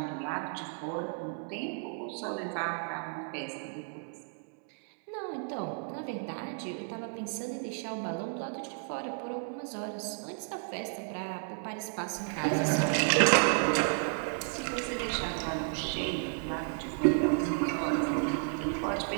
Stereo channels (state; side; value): silent; left; 56 dB below the other